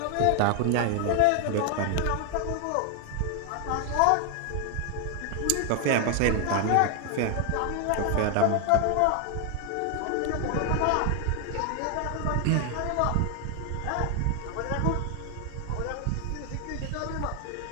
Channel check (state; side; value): different; both; correlation 0.00